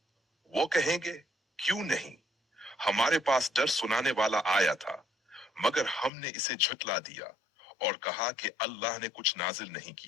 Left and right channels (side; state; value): right; drops out; at 6.1 s